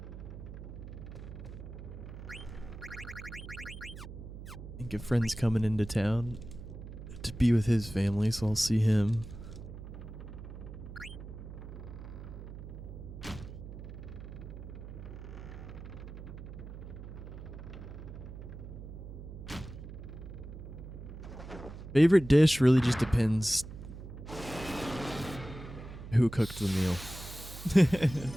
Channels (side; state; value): right; noise; hum, 11 dB below the sound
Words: I think a friend's coming into town to be with his family, so I'll see him. Favorite dish really just depends who cooked the meal.